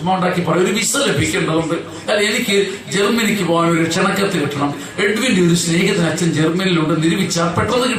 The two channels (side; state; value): both; identical; correlation 1.00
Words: ലഭിക്കേണ്ടതുണ്ട്. എനിക്ക് ജർമ്മനിക്ക് പോകാൻ ഒരു ക്ഷണക്കത്ത് കിട്ടണം. എഡ്വിന്റെ ഒരു സ്നേഹിതൻ അച്ഛൻ ജർമ്മനിയിലുണ്ട്, നിരൂപിച്ചാൽ പെട്ടെന്ന്